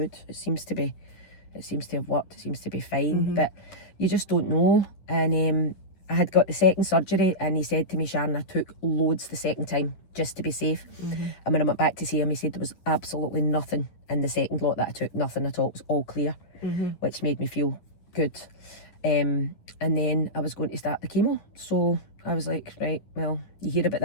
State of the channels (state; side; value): late; right; 10 ms